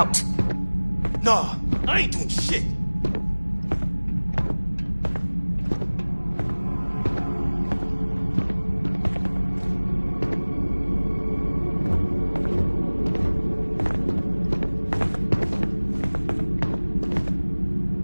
Nah, I ain't doing shit.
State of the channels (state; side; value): inverted; both; correlation -1.00